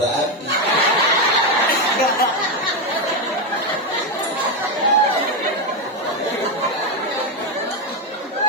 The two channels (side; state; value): both; normal; correlation 0.08